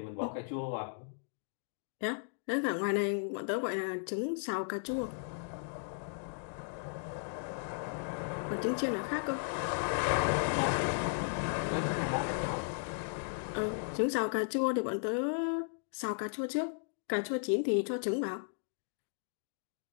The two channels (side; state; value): right; silent; digital silence